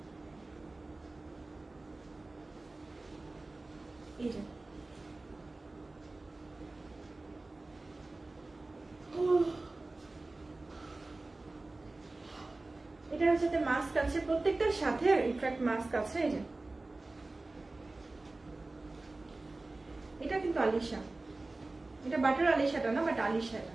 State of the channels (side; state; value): left; quieter; 3.1 dB